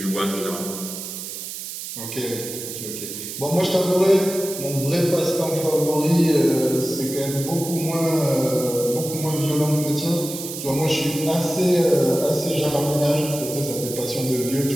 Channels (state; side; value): noise; right; hiss, 8 dB below the sound